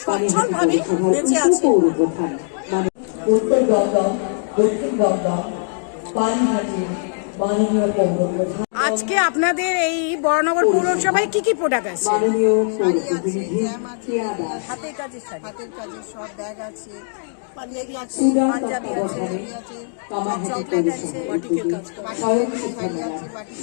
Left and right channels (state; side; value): silent; right; digital silence